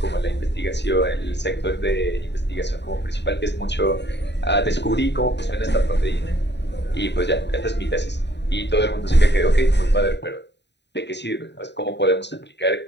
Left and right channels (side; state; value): right; late; 0.50 ms